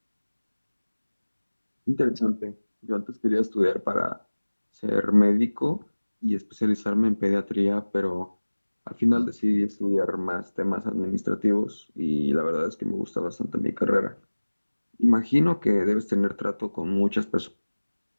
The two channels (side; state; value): both; inverted; correlation -1.00